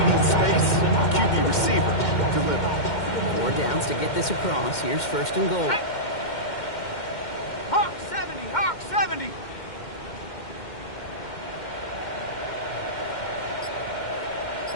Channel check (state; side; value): late; right; 2.1 ms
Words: space, QB receiver, deliver. 4 downs to get this across. Here's first and goal. Hawk 70, Hawk 70.